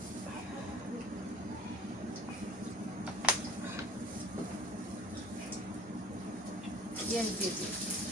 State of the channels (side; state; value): both; normal; correlation 0.45